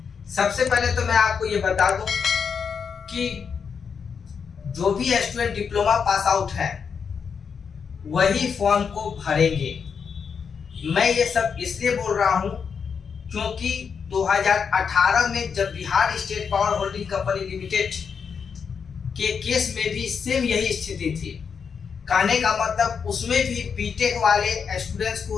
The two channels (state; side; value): quieter; right; 6.3 dB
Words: सबसे पहले तो मैं आपको ये बता दूं कि जो भी स्टूडेंट डिप्लोमा पास आउट है वही फॉर्म को भरेंगे। मैं ये सब इसलिए बोल रहा हूं क्योंकि 2018 में जब Bihar state power holding company limited के केस में भी सेम यही स्थिति थी। कहने का मतलब उसमें भी बीटेक वाले स्टूडेंट्स को